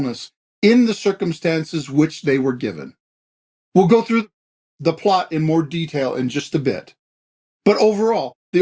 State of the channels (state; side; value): identical; both; correlation 1.00